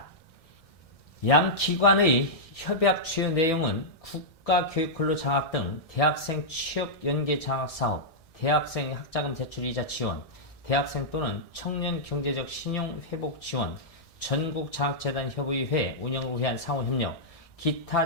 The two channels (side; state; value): right; late; 1.6 ms